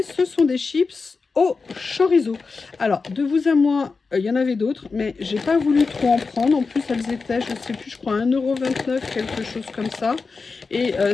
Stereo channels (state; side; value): quieter; right; 4.5 dB